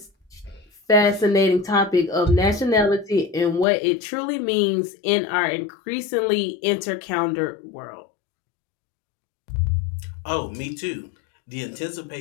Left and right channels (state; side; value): drops out; right; at 3.7 s